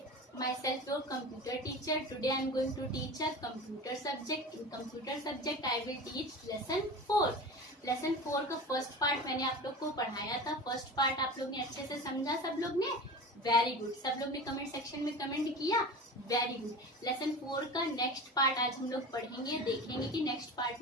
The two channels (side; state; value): both; normal; correlation 0.32